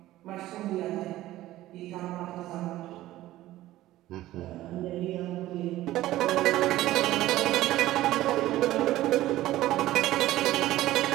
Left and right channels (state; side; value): quieter; left; 15.4 dB